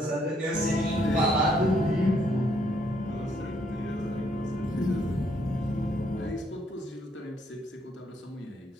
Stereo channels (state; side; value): normal; both; correlation 0.70